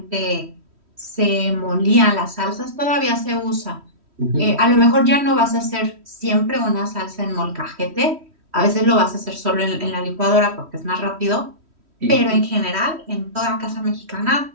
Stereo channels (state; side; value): late; left; 3.1 ms